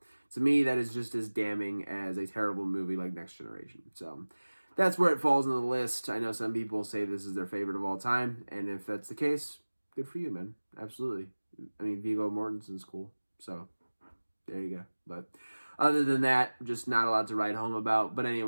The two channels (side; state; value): both; inverted; correlation -1.00